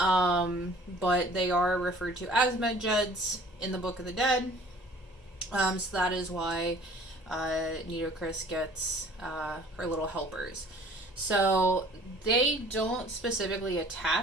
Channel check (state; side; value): normal; both; correlation 0.51